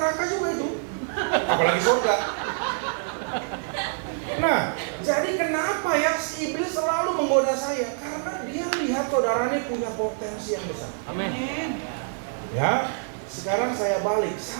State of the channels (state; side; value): silent; left; digital silence